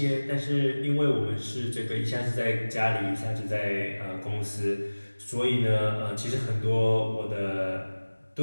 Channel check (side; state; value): both; inverted; correlation -1.00